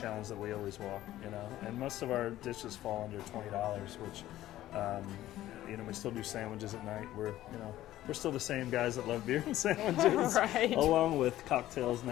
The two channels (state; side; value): quieter; right; 14.3 dB